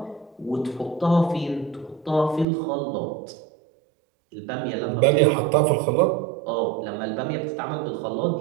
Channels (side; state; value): left; drops out; at 2.5 s